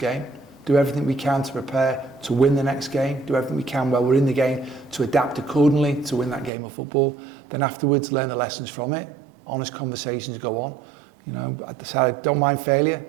Do everything we can to prepare to win the next game. Do everything we can while we're in the game to adapt accordingly to win that game of football. Then afterwards, learn the lessons from it. Honest conversations go on. I don't mind failure,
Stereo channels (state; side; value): drops out; left; at 6.5 s